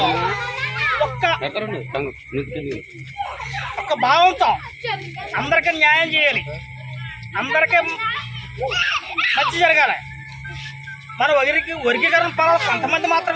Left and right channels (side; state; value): both; identical; correlation 1.00